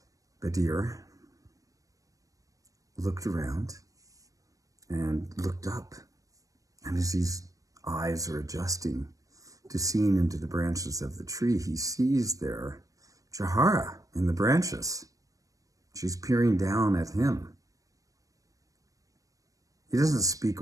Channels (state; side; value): late; left; 0.16 ms